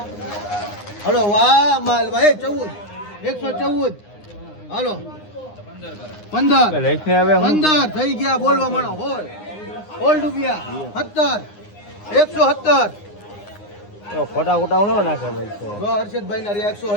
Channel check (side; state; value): right; late; 9.7 ms